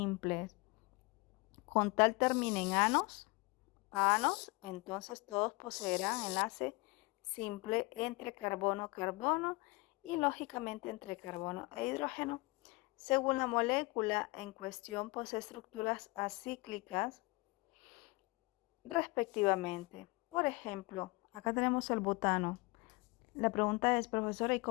Con tal terminen anos, entonces todos poseerán enlace simple entre carbono-carbono y lógicamente entre carbono e hidrógeno. Según la molécula en cuestión, posee estructuras acíclicas respectivamente. Por ejemplo, acá tenemos el butano. La pregunta es, profesora, ¿y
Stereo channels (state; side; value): quieter; right; 25.4 dB